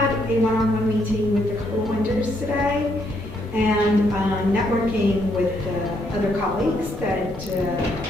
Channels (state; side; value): normal; both; correlation 0.73